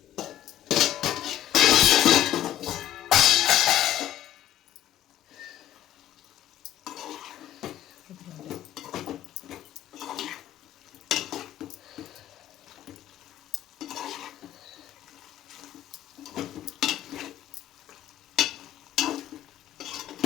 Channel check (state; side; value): quieter; right; 12.4 dB